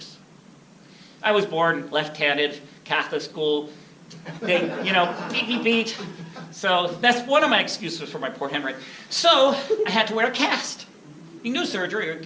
I was born left-handed, Catholic school, beat. So that's one of my excuses for my poor handwriting. So I had to wear a cast. You can do surgery or you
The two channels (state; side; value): identical; both; correlation 1.00